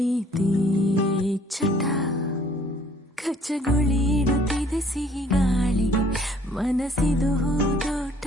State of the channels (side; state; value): both; normal; correlation 0.58